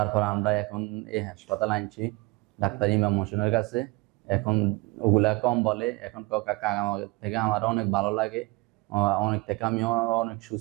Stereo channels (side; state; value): left; quieter; 24.2 dB